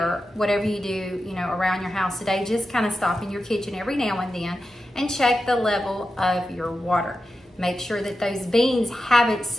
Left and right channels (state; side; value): normal; both; correlation 0.91